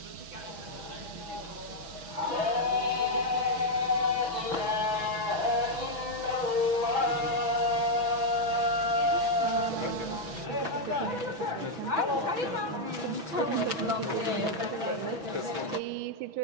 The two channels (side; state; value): left; late; 6.0 ms